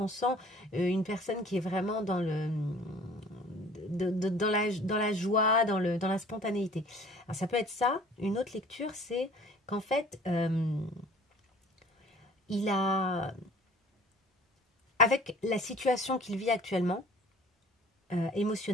sent une personne qui est vraiment dans dans la joie, dans la spontanéité. Alors ça peut être ça. Une autre lecture, c'est qu'en fait, il a, avec la situation qu'il vit actuellement,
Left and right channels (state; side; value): normal; both; correlation 0.49